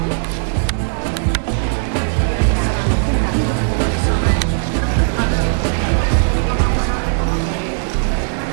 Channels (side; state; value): left; silent; digital silence